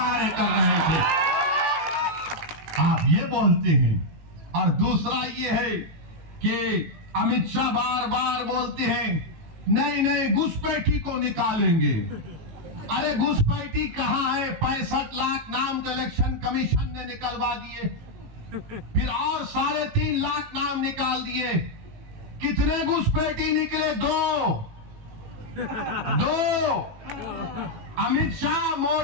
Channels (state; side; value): late; left; 19 ms